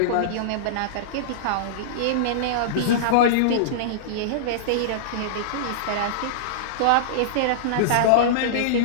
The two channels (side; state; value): both; different; correlation -0.03